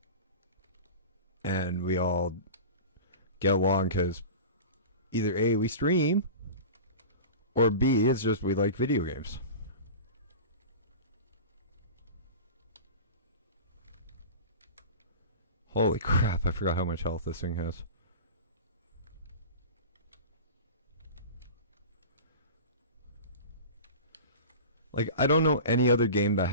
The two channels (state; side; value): inverted; both; correlation -0.33